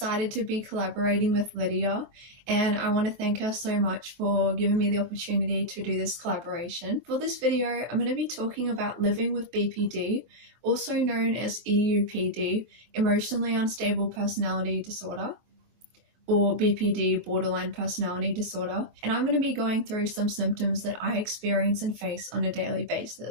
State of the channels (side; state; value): left; late; 24 ms